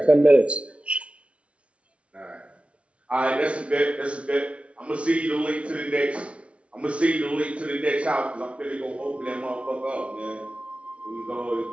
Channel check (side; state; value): left; late; 0.061 ms